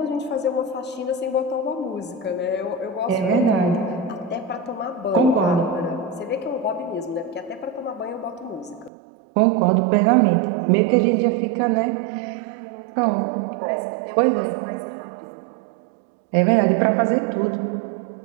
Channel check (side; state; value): left; drops out; at 8.9 s